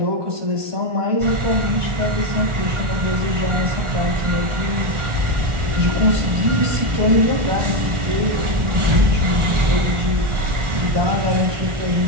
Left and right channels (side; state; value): left; late; 1.4 ms